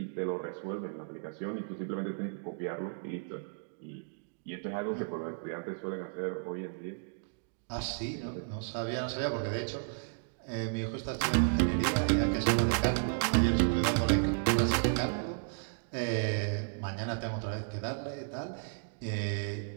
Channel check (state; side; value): silent; left; digital silence